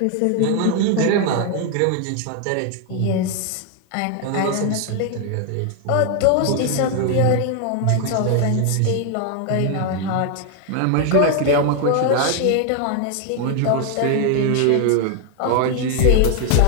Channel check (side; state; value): both; different; correlation 0.00